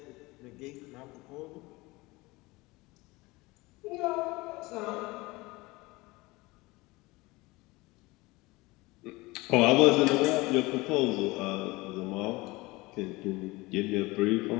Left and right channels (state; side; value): quieter; right; 22.2 dB